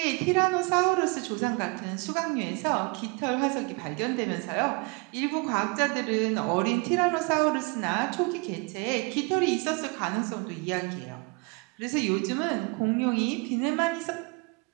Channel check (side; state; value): left; quieter; 30.7 dB